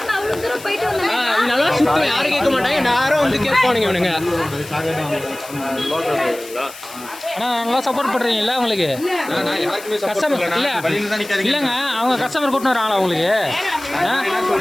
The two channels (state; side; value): noise; left; hiss, 16 dB below the sound